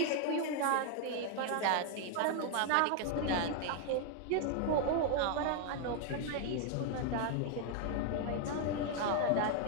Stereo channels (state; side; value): different; both; correlation 0.00